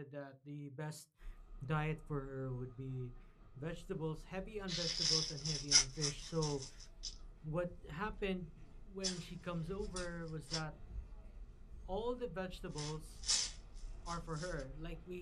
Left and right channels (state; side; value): identical; both; correlation 1.00